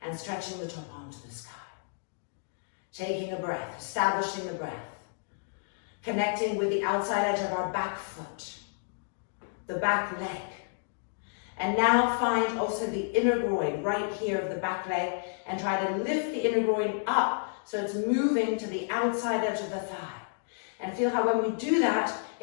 and stretching the top arm to the sky. Taking a breath, establishing the breath, connecting with the outside edge of our back foot, the back leg. And now find also the inner groin right here of the back leg and try to lift the inner groin up so it's moving to the outside edge of the thigh. And feel how when we do that,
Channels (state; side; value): silent; right; digital silence